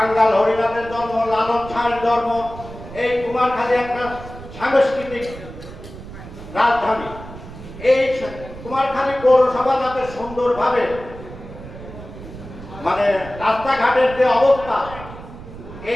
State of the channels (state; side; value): noise; right; rumble, 14 dB below the sound